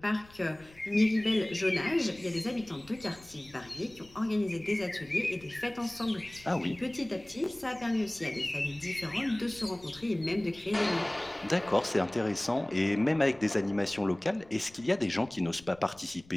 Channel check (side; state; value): left; noise; rumble, 25 dB below the sound